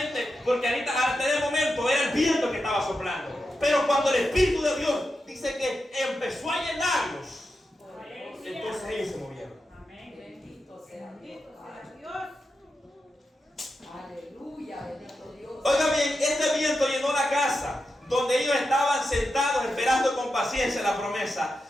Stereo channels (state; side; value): normal; both; correlation 0.89